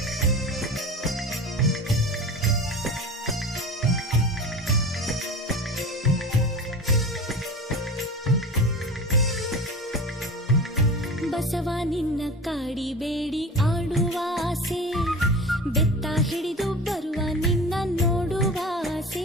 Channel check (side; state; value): both; normal; correlation 0.33